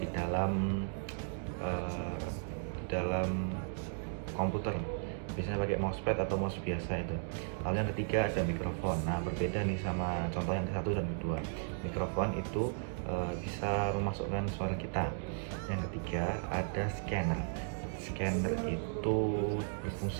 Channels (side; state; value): left; silent; digital silence